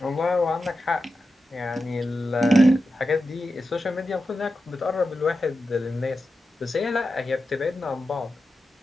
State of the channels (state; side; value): normal; both; correlation 0.91